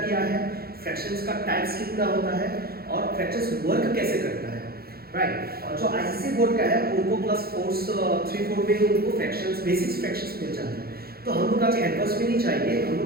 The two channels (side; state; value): left; late; 0.45 ms